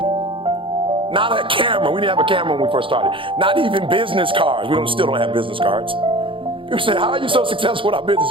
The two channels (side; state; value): left; late; 0.25 ms